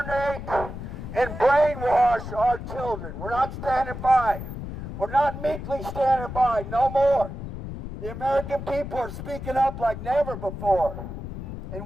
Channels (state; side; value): noise; left; rumble, 8 dB below the sound